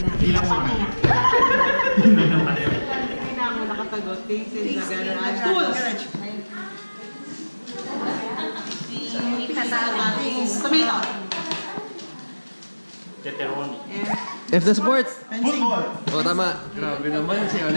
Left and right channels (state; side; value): inverted; both; correlation -1.00